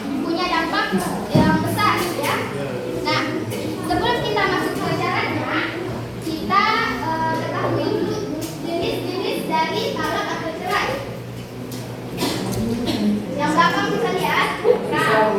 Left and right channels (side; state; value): both; identical; correlation 1.00